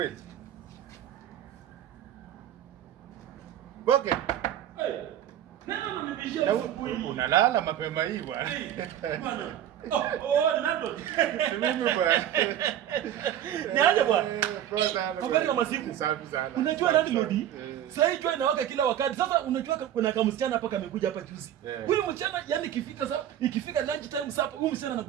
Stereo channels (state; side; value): quieter; left; 11.0 dB